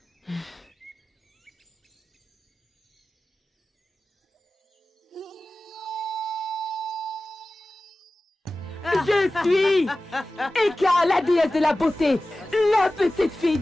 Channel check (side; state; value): both; normal; correlation 0.96